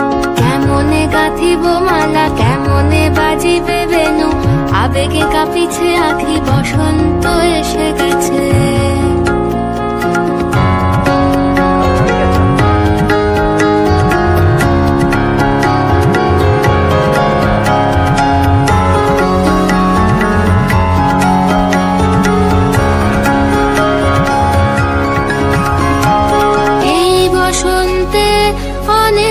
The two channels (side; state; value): both; identical; correlation 1.00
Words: কেমনে গাঁথিব মালা, কেমনে বাজিবে বেনু, আবেগে কাঁপিছে আঁখি, বসন্ত এসে গেছে। এই বসন্তে